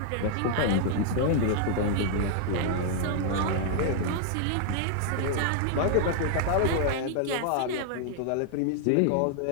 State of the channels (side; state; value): both; different; correlation 0.00